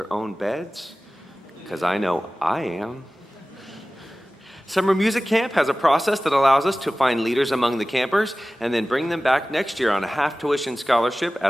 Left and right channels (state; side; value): normal; both; correlation 0.97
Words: own beds, because I know I am. Summer Music Camp has a process that allows us to find leaders among the campers and then bring them back next year on a half-tuition scholarship